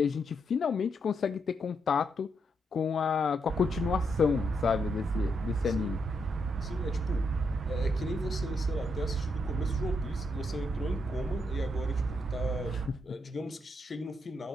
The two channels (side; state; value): both; normal; correlation 0.79